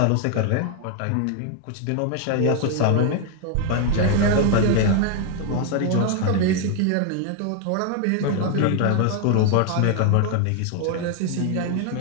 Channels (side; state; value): both; different; correlation 0.00